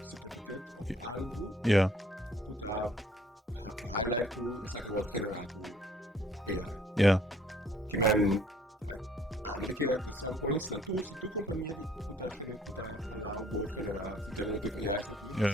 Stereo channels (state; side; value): normal; both; correlation 0.59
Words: of algo, que tá highlight que essa que wordt generar com AI. Que men met que at some points na se tu companhia de kuta allow bo generar generative AI aqui